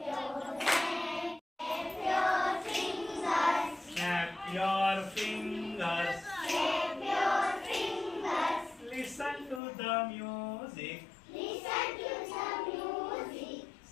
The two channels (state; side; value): drops out; right; at 9.6 s